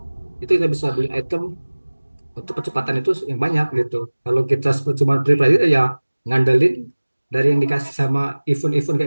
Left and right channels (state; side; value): inverted; both; correlation -1.00